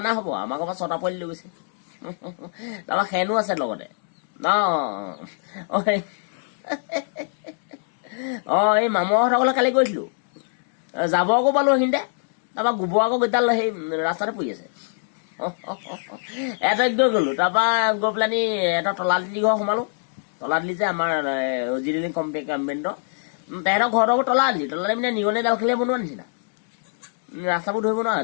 হ'ব আমাৰ ঘৰৰ পৰা 6টা পোৱালি লৈ গৈছে তাৰপৰা খেনো আছে লগতে এই মামুহঁতৰ ঘৰলৈ কালি গৈছিলো যাব আকৌ পালো সেইখিনিতে তাৰপৰা গোবৰ আকৌ গোটাল সেই ৰাস্তাতে পৰি আছে এটাক গৈ গ'লো তাৰপৰা গৈ পেলানি এটা তলাতলি ঘৰ সোমালো তলাতলি যে আমাৰ জিৰণি কম্পেণ্টৰ তেহেঁতৰ ঘৰটো তলাতলি মানে নিগনি ডাল খেলিয়ে বনোৱা নিচিনা ৰাস্তাবোৰ ধৰিব নোৱাৰে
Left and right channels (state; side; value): silent; right; digital silence